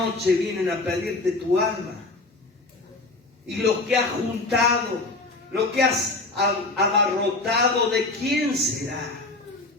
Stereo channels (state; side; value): quieter; right; 3.1 dB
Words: vienen a pedirte tu alma. Y lo que has juntado, lo que has abarrotado, ¿de quién será?